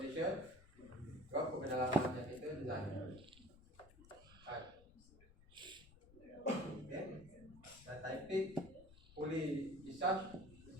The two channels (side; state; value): left; noise; rumble, 22 dB below the sound